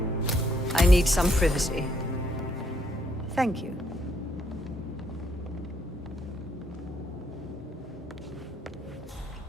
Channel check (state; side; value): normal; both; correlation 0.71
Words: I need some privacy. Thank you.